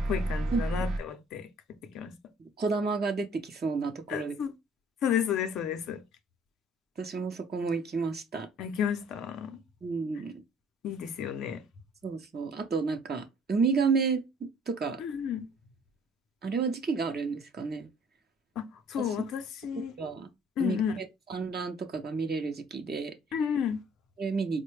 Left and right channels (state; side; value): normal; both; correlation 0.56